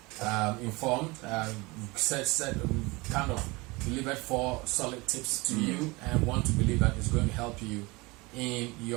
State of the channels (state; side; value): quieter; left; 24.2 dB